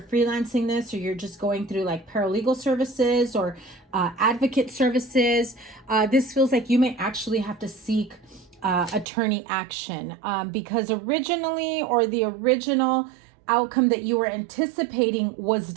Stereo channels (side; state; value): left; drops out; at 9.1 s